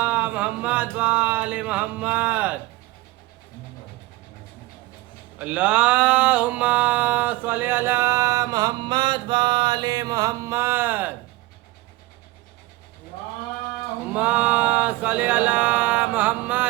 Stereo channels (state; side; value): quieter; left; 18.9 dB